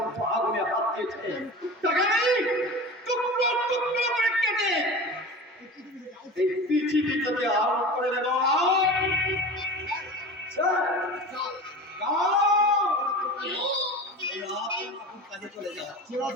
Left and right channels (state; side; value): normal; both; correlation 0.33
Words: আগুনে হাত দিয়েছে তাকে আমি টুকরো টুকরো করে কেটে এই পৃথিবীতে আরোপ করে দেব